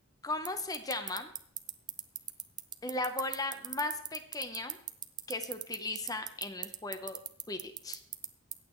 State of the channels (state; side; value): normal; both; correlation 0.03